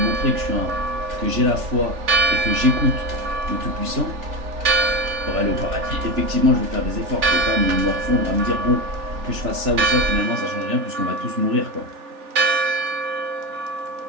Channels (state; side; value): late; left; 3.4 ms